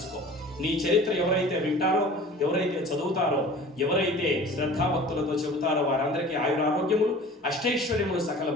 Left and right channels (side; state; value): both; normal; correlation 0.43